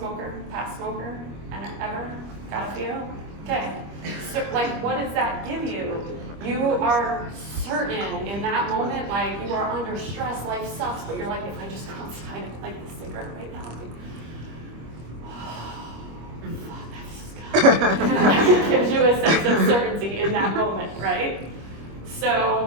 Past smoker? And ever? Got a few? Okay. So, like, what does that give you? You are certain in that moment, like you are under stress, life sucks, but you're like, if I just go outside and light this cigarette right now, it gives you a sense of certainty in that moment, right?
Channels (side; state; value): left; late; 25 ms